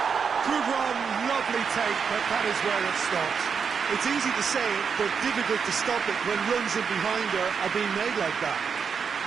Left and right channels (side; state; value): left; quieter; 6.2 dB